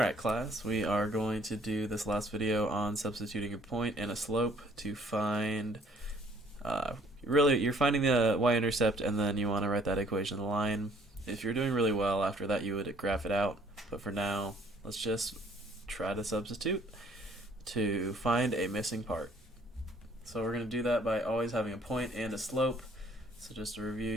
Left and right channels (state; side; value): normal; both; correlation 0.60